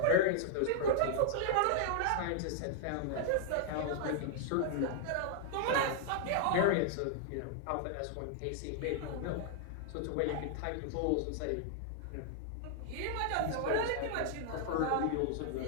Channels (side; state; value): both; different; correlation -0.01